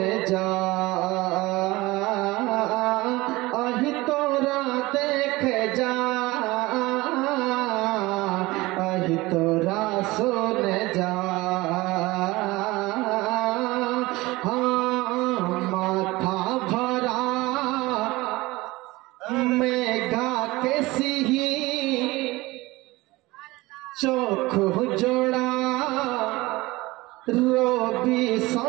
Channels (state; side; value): quieter; left; 20.7 dB